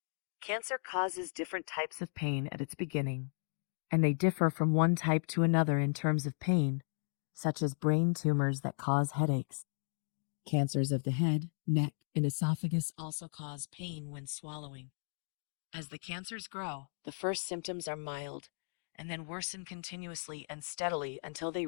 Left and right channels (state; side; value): silent; right; digital silence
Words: Cancer causes different types of pain at its beginning, and they differ from one type to another in terms of pain, such as brain tumors that cause headaches. Cancers of the head, neck, and esophagus also cause pain when swallowing. As the cancers grow, the first symptoms are mild, and then worsen continuously and steadily until they